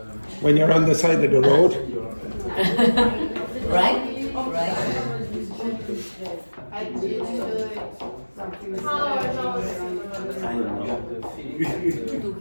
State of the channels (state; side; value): inverted; both; correlation -1.00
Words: When you're on the side of the road. right?